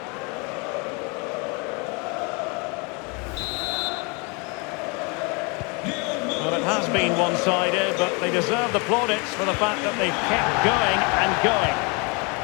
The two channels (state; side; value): quieter; right; 31.2 dB